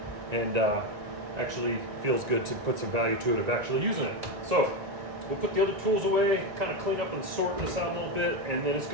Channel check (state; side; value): late; left; 1.9 ms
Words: and actually feels good to put some value to it of actually using it. So we'll put the other tools away, kind of clean up and sort this out a little bit, and then it's